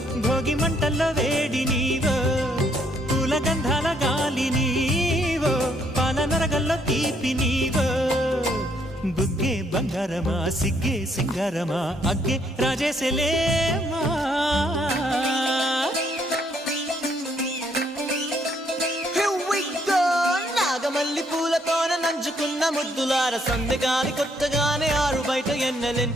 భోగి మంటల్లో వేడి నీవో పూల గంధాల గాలి నీవో పాల నరగల్లో తీపి నీవో బుగ్గే బంగారమా సిగ్గే సింగారమా అగ్గే రాజేశలేమా నాగమల్లి పూలతోన నంచుకున్న ముద్దులార సందెగాని కొత్తగానే ఆరు బయట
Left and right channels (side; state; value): both; normal; correlation 0.70